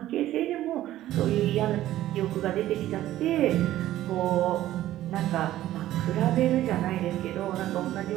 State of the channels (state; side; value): quieter; left; 14.0 dB